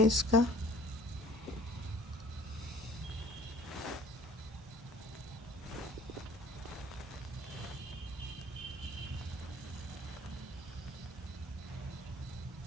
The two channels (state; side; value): normal; both; correlation 0.49